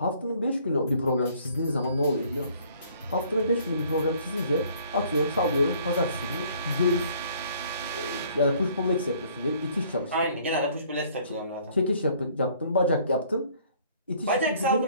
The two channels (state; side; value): inverted; both; correlation -0.58